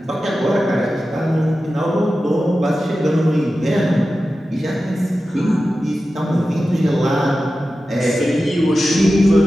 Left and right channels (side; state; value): both; normal; correlation 0.93